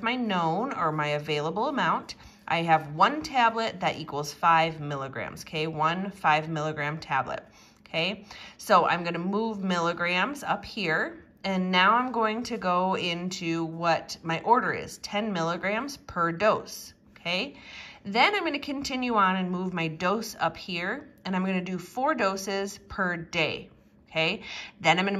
my known or my available amount. I have 1 tablet that equals 5 milligrams, okay? 1 5 milligram tablet. Okay, so I'm going to move milligrams up here, and now I'm going to go into what my order is, 10 milligrams per dose, okay? Then I'm going to continue on and move my dose up here, and I'm going to do 4 doses per day, okay? Then I'm going to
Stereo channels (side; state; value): both; identical; correlation 1.00